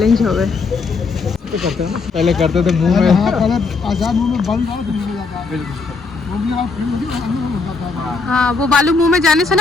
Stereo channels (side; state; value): right; quieter; 4.3 dB